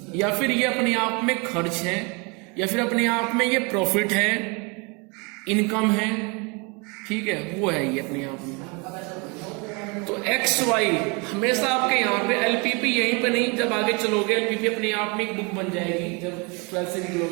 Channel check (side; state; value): left; quieter; 30.5 dB